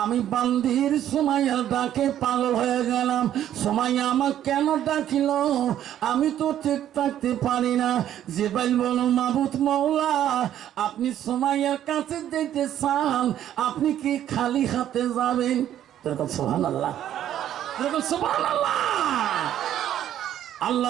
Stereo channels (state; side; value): quieter; left; 11.2 dB